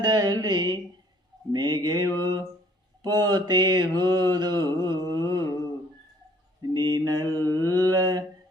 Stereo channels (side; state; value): both; normal; correlation 0.59